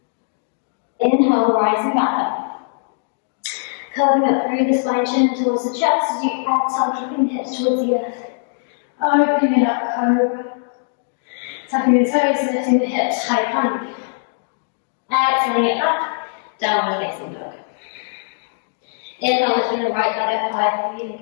Inhale, rising back up. Curving up through the spine, chin towards the chest as you exhale, dropping the hips towards the earth. Opening it up, cobra. Tucking the toes, lifting the hips, high plank. Exhaling it back, downward facing dog. Inhale, lifting the right leg up high,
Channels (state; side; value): silent; right; digital silence